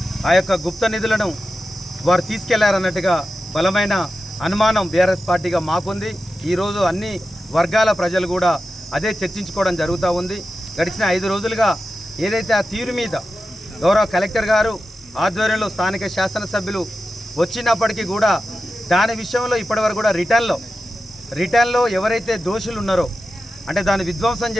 ఆ యొక్క గుప్త నిధులను వారు తీసుకెళ్లారన్నట్టుగా బలమైన అనుమానం బీఆర్ఎస్ పార్టీగా మాకుంది. ఈరోజు అన్ని వర్గాల ప్రజలు కూడా అదే చర్చించుకోవడం జరుగుతూ ఉంది. గడిచిన 5 రోజులుగా ఏదైతే ఆ తీరు మీద గౌరవ కలెక్టర్ గారు ఆధ్వర్యంలో స్థానిక శాసనసభ్యులు వచ్చినప్పటికీ కూడా దాని విషయంలో ఇప్పటివరకు కూడా రిటర్న్లో ఎవరైతే దోషులు ఉన్నారో అంటే దాన్ని విధ్వంసం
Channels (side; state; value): both; normal; correlation 0.92